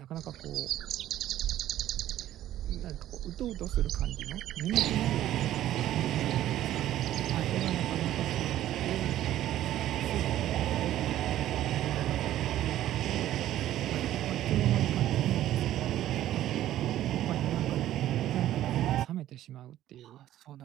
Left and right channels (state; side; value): quieter; left; 13.0 dB